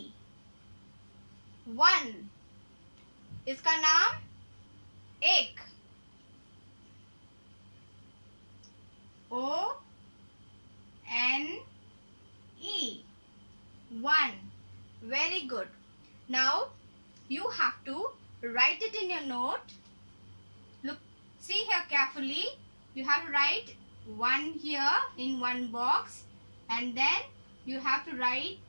1. इसका नाम एक. O N E 1. Very good. Now you have to write it in your note. Look, see here carefully. You have to write 1 here in one box, and then you have to write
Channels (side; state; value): both; inverted; correlation -1.00